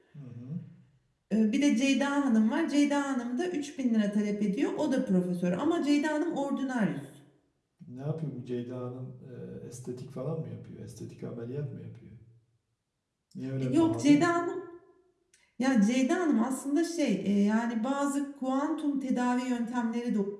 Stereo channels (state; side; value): identical; both; correlation 1.00